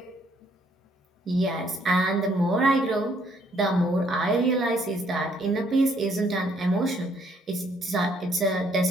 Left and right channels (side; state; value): both; normal; correlation 0.68